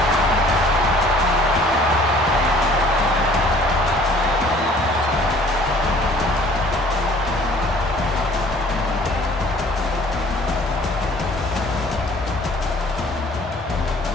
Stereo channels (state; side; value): normal; both; correlation 0.53